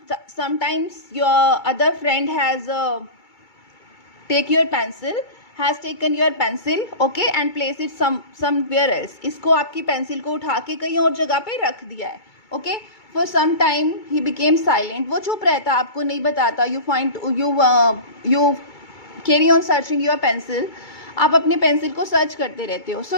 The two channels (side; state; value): right; late; 2.3 ms